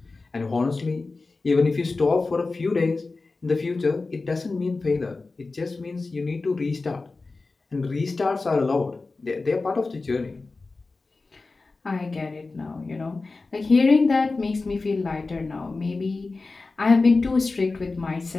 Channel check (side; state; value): right; quieter; 3.7 dB